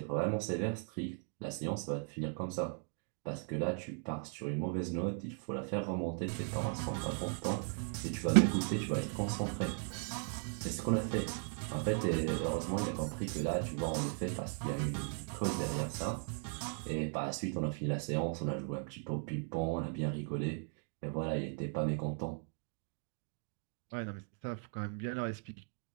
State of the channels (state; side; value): silent; left; 53 dB below the other